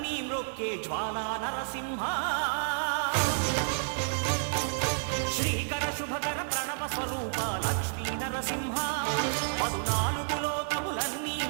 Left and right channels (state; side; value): silent; left; digital silence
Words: మ్రొక్కే జ్వాలా నరసింహ శ్రీకర శుభకర ప్రణవ స్వరూప లక్ష్మీ నరసింహ 14 లోకములన్నీ